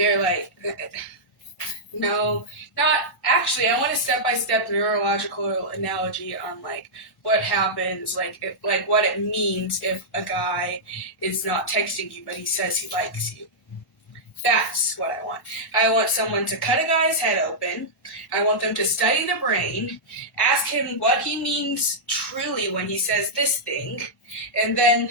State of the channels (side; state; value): both; normal; correlation -0.10